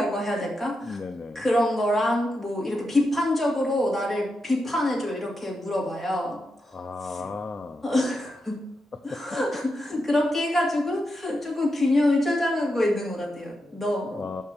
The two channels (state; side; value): normal; both; correlation 0.86